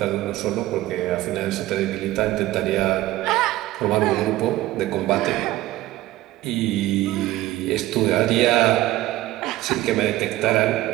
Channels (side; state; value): left; quieter; 16.1 dB